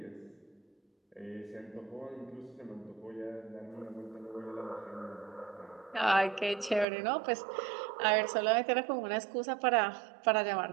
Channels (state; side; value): drops out; left; at 6.9 s